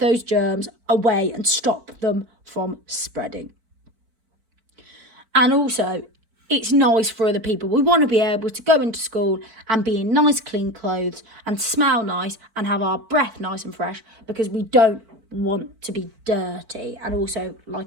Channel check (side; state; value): left; late; 4.5 ms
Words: germs away and stop them from spreading. And also, it's nice for other people. We want to be able to go into school and be in nice clean clothes and smell nice and have our breath nice and fresh, because we don't want to be dirty. And also,